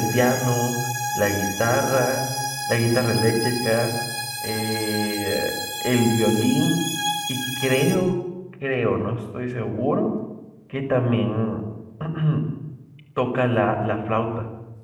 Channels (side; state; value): both; identical; correlation 1.00